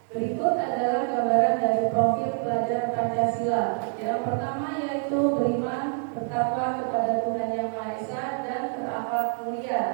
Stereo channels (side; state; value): left; silent; 55 dB below the other